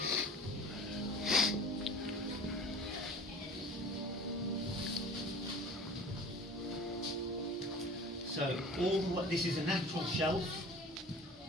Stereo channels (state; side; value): normal; both; correlation 0.43